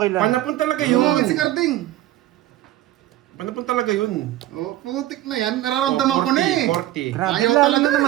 lang. Panapon talaga Pumangit si yun. Carding. Panapon talaga yun. Oh, putik na yan. Nararamdaman ko na eh. 40. Grabe, Ayaw lalo talaga. na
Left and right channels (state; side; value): quieter; left; 14.7 dB